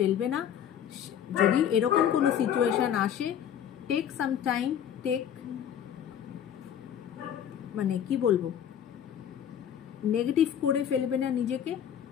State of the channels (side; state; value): right; quieter; 9.4 dB